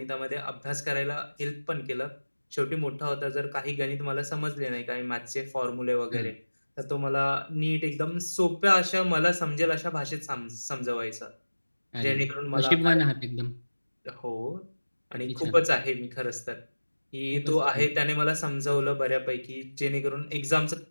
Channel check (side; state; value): both; inverted; correlation -1.00